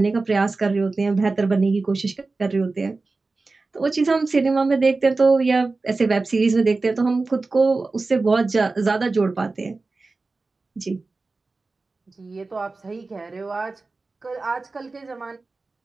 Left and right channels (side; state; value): left; quieter; 3.7 dB